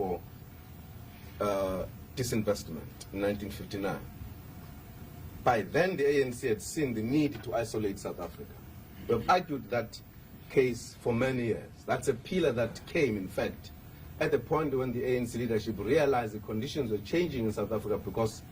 disinvestment in 1959. By then, the ANC had seen the need to isolate South Africa. We have argued that case for many years. That's a pillar that came, in fact, at the point when the ANC leadership realized the conditions were changing in South Africa because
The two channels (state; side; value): identical; both; correlation 1.00